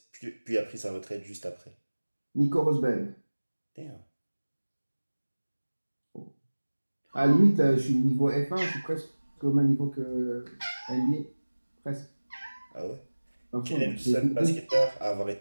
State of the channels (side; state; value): both; inverted; correlation -1.00